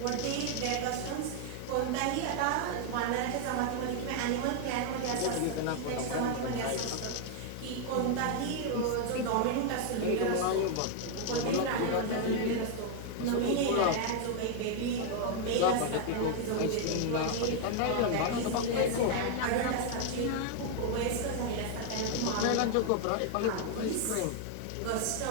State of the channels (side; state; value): both; different; correlation 0.00